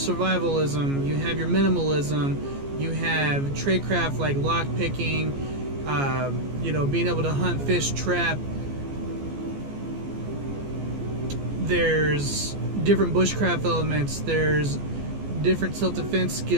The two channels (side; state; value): left; late; 14 ms